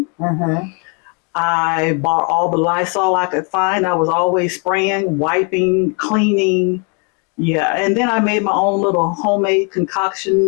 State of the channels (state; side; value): quieter; right; 35.8 dB